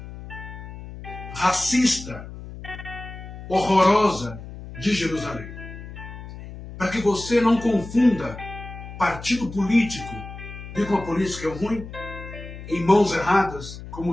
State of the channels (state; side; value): noise; left; hum, 12 dB below the sound